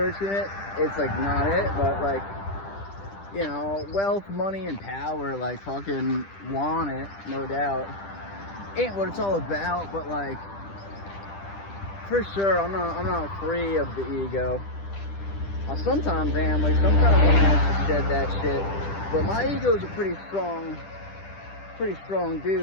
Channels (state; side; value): late; right; 10 ms